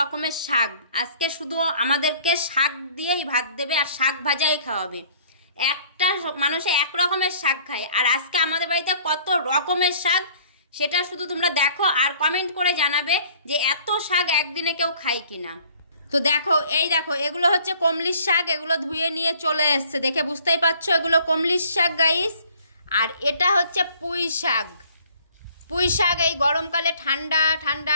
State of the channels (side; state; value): both; inverted; correlation -0.55